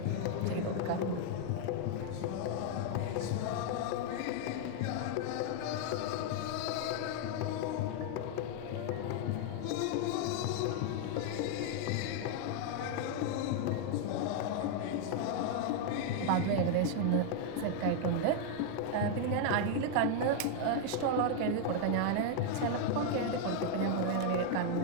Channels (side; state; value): both; different; correlation 0.00